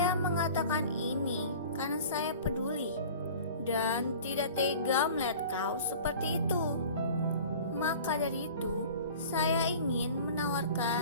mengatakan ini karena saya peduli dan tidak tega melihat kau seperti itu. Maka dari itu, saya ingin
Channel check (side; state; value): both; inverted; correlation -0.42